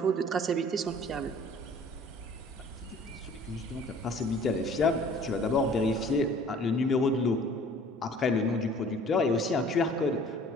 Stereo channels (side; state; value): both; normal; correlation 0.51